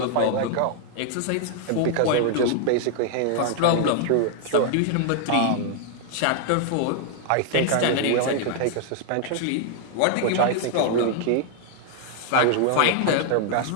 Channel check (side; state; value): both; different; correlation 0.00